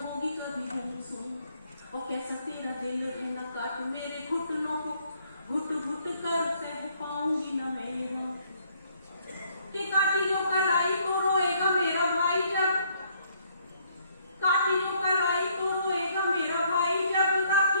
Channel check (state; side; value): inverted; both; correlation -0.67